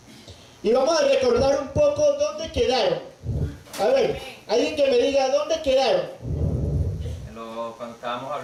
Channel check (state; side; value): identical; both; correlation 1.00